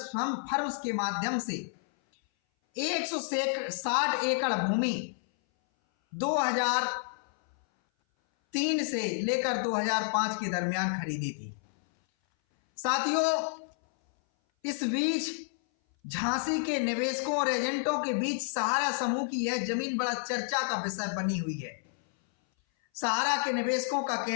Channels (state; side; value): silent; right; 58 dB below the other